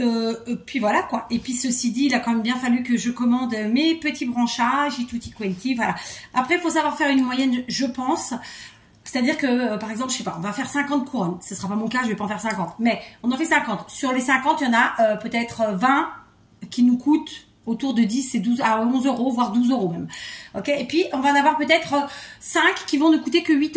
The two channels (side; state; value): both; identical; correlation 1.00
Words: Puis voilà quoi. Et puis ceci dit, il a quand même bien fallu que je commande mes petits branchages et tutti quanti. Voilà. Après, il faut savoir faire une moyenne, je pense. C'est-à-dire que, par exemple, je sais pas, on va faire 50 couronnes. Ce sera pas mon cas, je vais pas en faire 50. Mais on en fait 50. Sur les 50, il y en a peut-être 20 qui nous coûtent autour de 10 et 12 à 11 €, voire 12 € même. Ok. Et puis, on va en avoir peut-être 5 qui vont ne coûter que 8